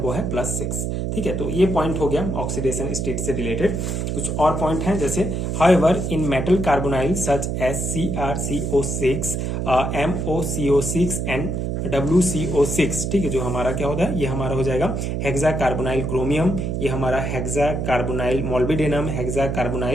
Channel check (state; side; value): noise; right; hum, 1 dB below the sound